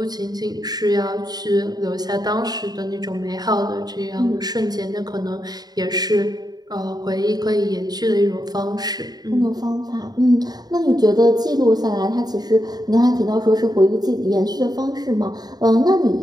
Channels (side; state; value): left; late; 0.19 ms